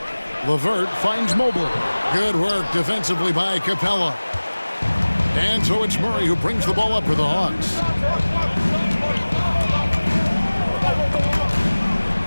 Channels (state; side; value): inverted; both; correlation -1.00